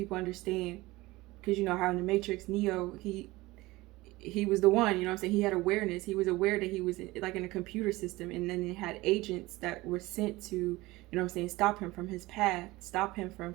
understand. Because you know how in the Matrix, Neo, he was the one, you know what I'm saying? He had awareness. He was aware that he was like in a computer system, and then it had agents that were sent to, you know what I'm saying, stop him from his path, stop him from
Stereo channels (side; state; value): left; quieter; 20.1 dB